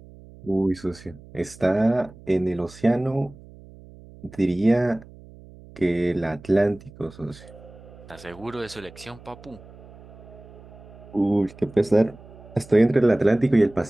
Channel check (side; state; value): right; noise; hum, 20 dB below the sound